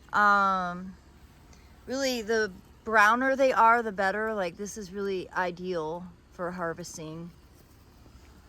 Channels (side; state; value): both; identical; correlation 1.00